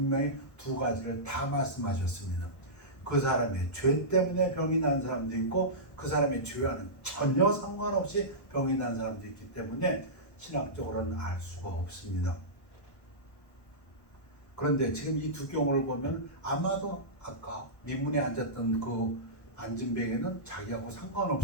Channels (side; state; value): right; late; 1.1 ms